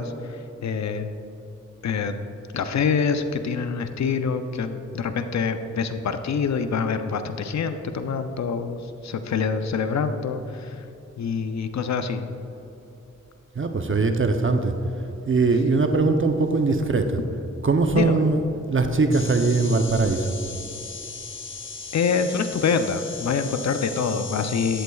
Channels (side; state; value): both; normal; correlation 0.39